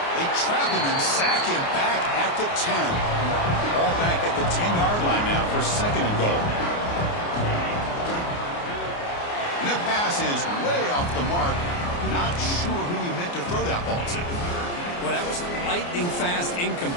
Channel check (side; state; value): right; late; 29 ms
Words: They trap him and sack him back at the 10. All back at the 10-yard line now for second and goal. And the pass is way off the mark. Not sure who he meant to throw that ball to. Well, that was a lightning-fast